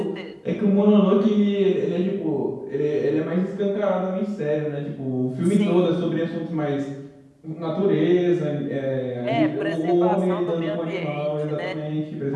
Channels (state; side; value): identical; both; correlation 1.00